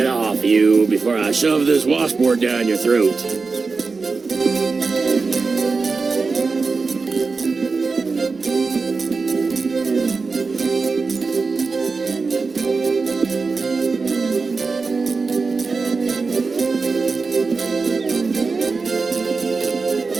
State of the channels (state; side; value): quieter; left; 4.3 dB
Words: off, you, before I shove this washboard down your throat.